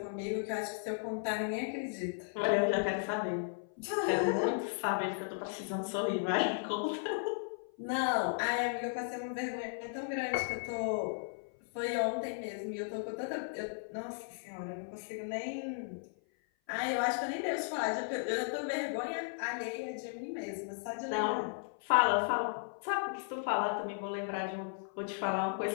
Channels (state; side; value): silent; right; 54 dB below the other